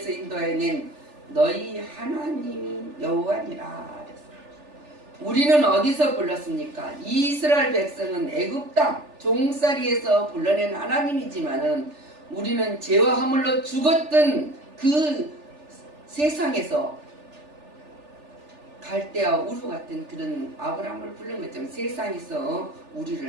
인도해낸 너희 하나님이 여호와니라. 우리는 어디서 불렀습니까? 이스라엘 백성은 애굽 땅 종살이에서 불러낸 하나님이지만은 우리는 죄와 허물로 죽었던 그 세상에서 갈대와 우루 같은 그런 아브라함을 부른 것처럼 세상에서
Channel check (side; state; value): left; late; 3.4 ms